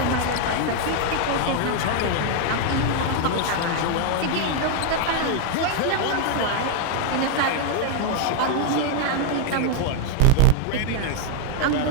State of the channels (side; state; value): both; different; correlation 0.00